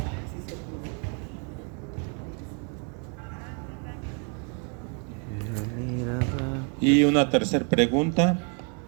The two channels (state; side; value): quieter; left; 38.9 dB